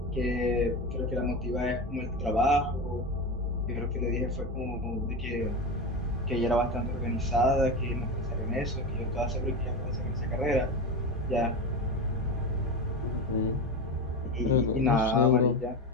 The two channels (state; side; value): normal; both; correlation 0.22